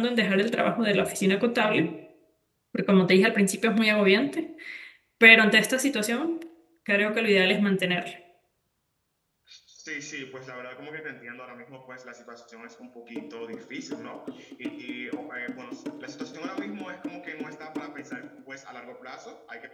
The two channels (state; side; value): identical; both; correlation 1.00